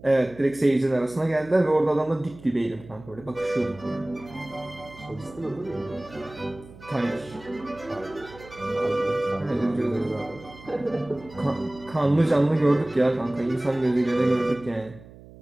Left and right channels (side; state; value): right; noise; hum, 20 dB below the sound